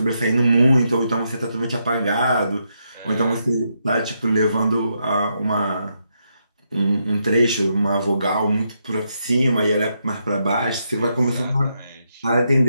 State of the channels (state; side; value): inverted; both; correlation -0.80